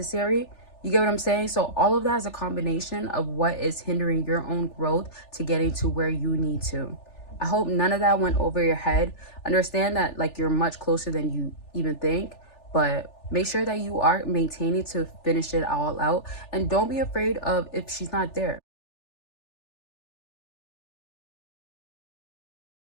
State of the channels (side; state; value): right; late; 3.4 ms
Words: You get what I'm saying? So all of that is a combination of what is hindering your own growth to getting to where you need to. I hope none of that went over your head. Understand that like, you're much closer than you even think, but make sure that you are maintaining to finish it all out, and don't be afraid of if she's not there.